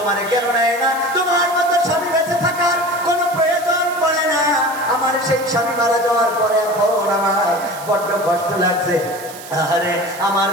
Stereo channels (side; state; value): right; noise; hiss, 16 dB below the sound